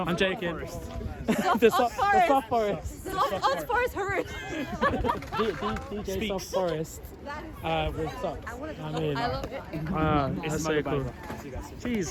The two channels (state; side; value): identical; both; correlation 1.00